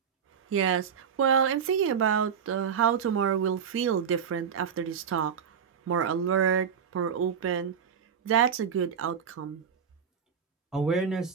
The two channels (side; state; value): left; quieter; 7.3 dB